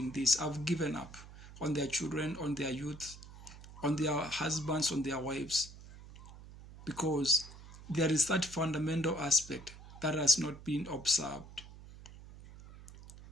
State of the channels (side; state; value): right; noise; hum, 17 dB below the sound